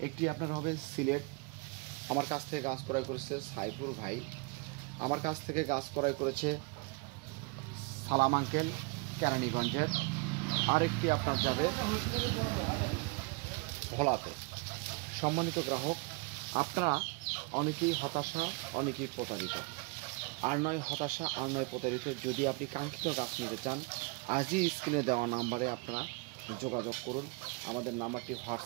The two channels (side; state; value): left; quieter; 28.9 dB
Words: একটি আপনার হবে সিলেট, আমার কাছ থেকে গাছ ক্রয় করেছে সাইফুল ভাই। আমার কাছ থেকে গাছ ক্রয় করেছে সালাম আঙ্কেল কেরানীগঞ্জের। আরেকটি আপনার যাবে ভোলাতে। সম্মানিত গ্রাহক, আপনারা অনেকেই হতাশা, অনেকেই প্রতারিত। আর নয় হতাশা, আর নয় প্রতারিত। যদি আপনি কাঙ্ক্ষিত গাছ নিতে চান, আজই স্ক্রিনে দেওয়া নাম্বারে আপনারা যোগাযোগ করুন। আমাদের নাম্বারটি